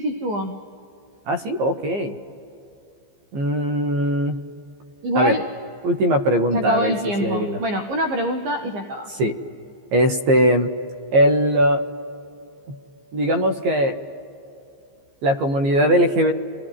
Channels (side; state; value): left; late; 15 ms